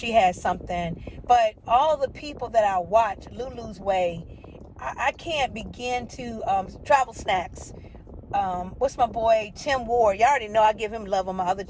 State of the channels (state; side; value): identical; both; correlation 1.00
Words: has something. But all the people that I watch, Lulu's Way, I can't begin to, Travel Snacks. What's my boy Tim Ward? Y'all already know I give him love on my other